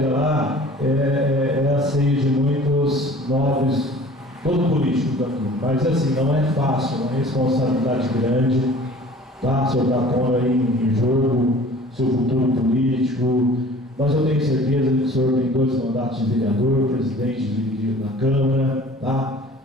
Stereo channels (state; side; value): normal; both; correlation 0.47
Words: lá é a ceia de muitos nobres, todo político daqui, mas assim, não é fácil, é uma responsabilidade grande, tá? O senhor está pondo aí em jogo seu futuro político, mas eu tenho certeza que o senhor tem 2 mandatos de vereador, presidente da Câmara, tá?